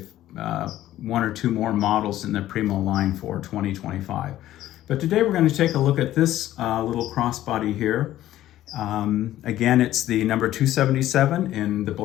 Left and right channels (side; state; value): right; quieter; 13.7 dB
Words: one or two more models in the Primo line for 2025. But today we're going to take a look at this little crossbody here. Again, it's the number 277 in the